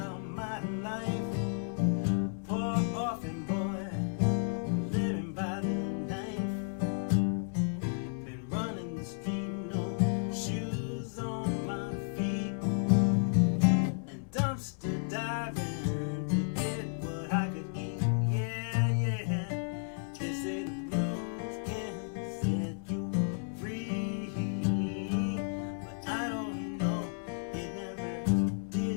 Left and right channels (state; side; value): silent; right; 56 dB below the other